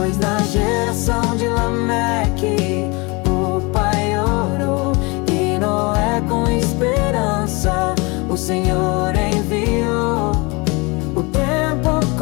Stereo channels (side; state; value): right; quieter; 27.3 dB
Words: na geração de Lameque o pai orou, e Noé com esperança o Senhor enviou. O tempo